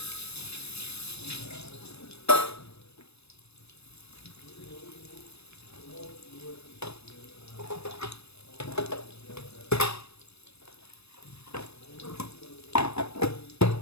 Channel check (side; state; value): right; late; 0.79 ms